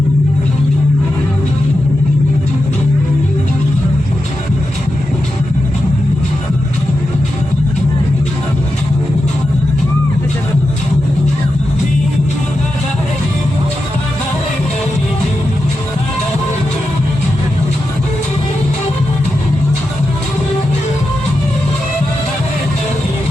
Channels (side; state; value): both; normal; correlation 0.89